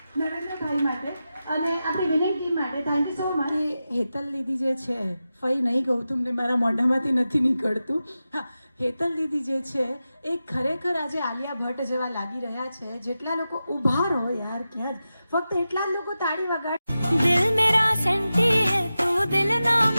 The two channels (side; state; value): both; inverted; correlation -0.92